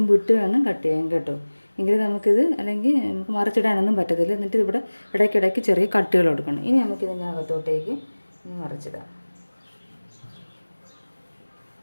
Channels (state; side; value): inverted; both; correlation -1.00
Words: ഇട്ട് വേണം കട്ട് ചെയ്യാൻ കേട്ടോ. എങ്കിൽ നമുക്കിത്, അല്ലെങ്കിൽ നമുക്ക് മറിച്ചിടാനൊന്നും പറ്റത്തില്ല. എന്നിട്ട് ഇവിടെ ഇടയ്ക്കിടയ്ക്ക് ചെറിയ കട്ടുകൾ കൊടുക്കണം. ഇനി നമുക്കിതിനകത്തോട്ടേക്ക് മറിച്ചിടാം.